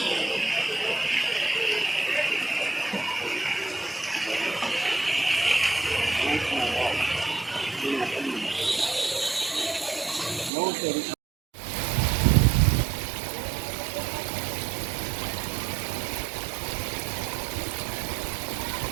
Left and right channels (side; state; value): left; drops out; at 10.5 s